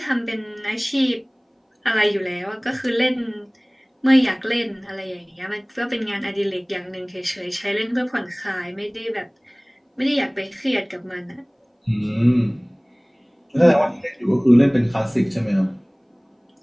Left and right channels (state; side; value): identical; both; correlation 1.00